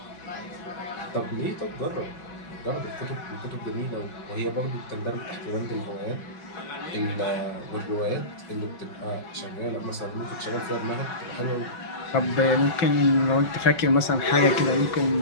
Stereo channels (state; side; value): late; right; 5.5 ms